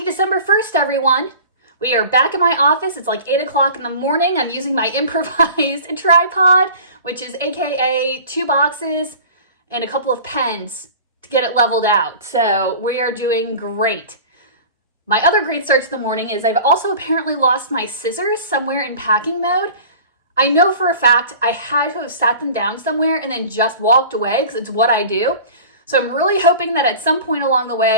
December 1st, everyone. We are back in my office. It's like 8 o'clock in the morning. I'm using my improvised tripod, which is AKA 2 boxes and a couple of pens to get it leveled out. So we are doing great. My other great start to the morning is I've also apparently lost my scissors somewhere in packing mode. I know for a fact I had to have sat them down somewhere and then just walked away because it's what I do. So I'm really hoping that at some point along the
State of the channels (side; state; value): both; inverted; correlation -0.41